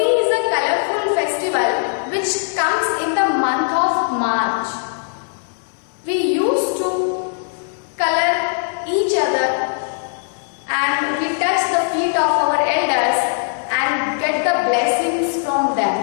is a colorful festival which comes in the month of March. We used to color each other and we touch the feet of our elders and get the blessings from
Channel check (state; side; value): silent; right; digital silence